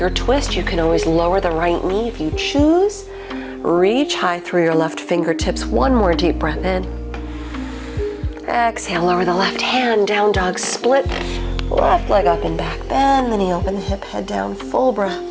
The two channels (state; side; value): identical; both; correlation 1.00